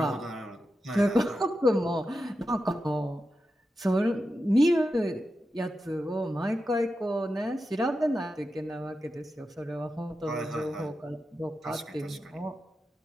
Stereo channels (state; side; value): normal; both; correlation 0.90